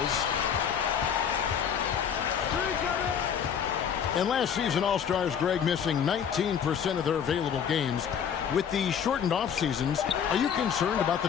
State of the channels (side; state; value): right; quieter; 7.9 dB